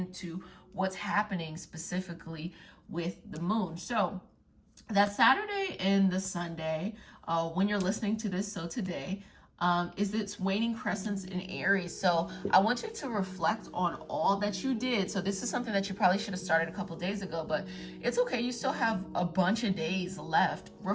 what's happening specifically with the moon. So that Saturday and the Sunday, when you're listening to this, so today, is its waning crescents in Aries. So I want you to reflect on all that you did. So this is something that you probably should have started a couple days ago, but it's okay. You still have a bunch of days left.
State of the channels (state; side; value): identical; both; correlation 1.00